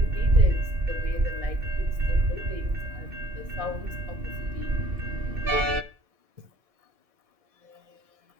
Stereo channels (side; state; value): left; late; 1.7 ms